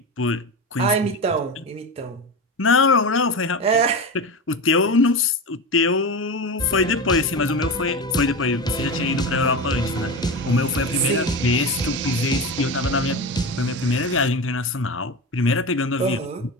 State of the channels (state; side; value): normal; both; correlation 0.23